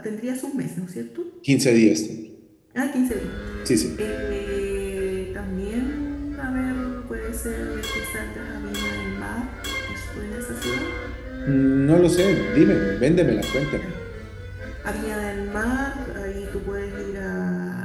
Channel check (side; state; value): both; identical; correlation 1.00